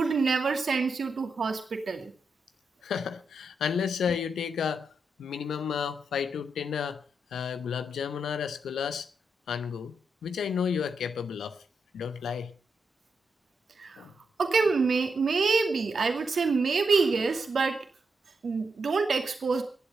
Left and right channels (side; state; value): both; normal; correlation 0.83